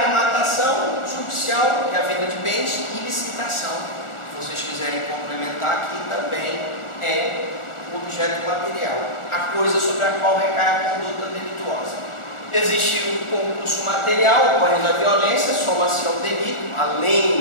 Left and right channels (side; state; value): right; late; 1.4 ms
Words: judicial, que é a venda de bens, e licitação. Se vocês quiserem complementar aqui, também é o objeto material, a coisa sobre a qual recai a conduta delituosa. Existe o concurso material, ocorrendo a violência, soma-se ao delito,